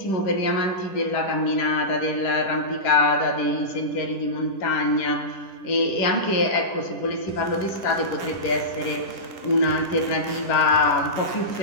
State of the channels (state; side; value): late; right; 10 ms